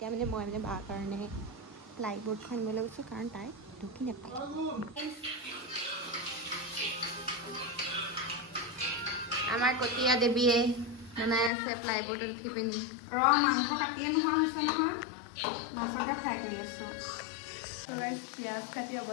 মানে মই মানে বাৰ কাৰণে প্লাইবোৰ্ডখন আনিবলৈ গৈছোঁ কাৰণ তাই ঢুকি নাপায় আমাৰ কটীয়া দেৱীয়ে বনাই আছে প্লাইবোৰ্ডত উঠি পিনি মাংস কাটিয়ে নোহোৱা হৈছে নহয় মাছকে ফ্ৰাই কৰি আছোঁ পিঁয়াজ কাটি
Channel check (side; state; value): right; drops out; at 11.5 s